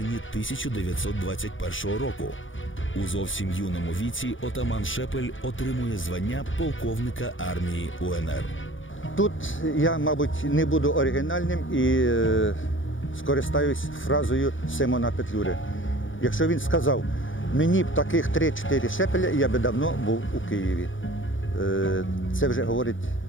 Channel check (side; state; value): right; late; 0.57 ms